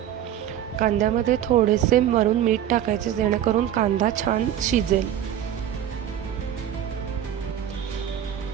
कांद्यामध्ये थोडेसे वरून मीठ टाकायचे जेणेकरून कांदा छान शिजेल।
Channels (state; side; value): quieter; left; 10.8 dB